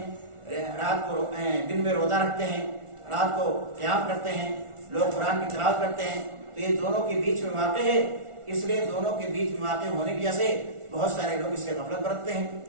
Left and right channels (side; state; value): left; late; 1.4 ms